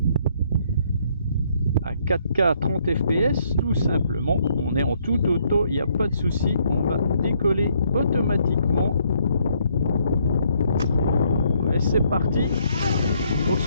à 4K 30 fps tout simplement, on est en tout auto, il n'y a pas de souci, on va décoller automatiquement. Et c'est parti. Donc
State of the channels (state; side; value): inverted; both; correlation -0.69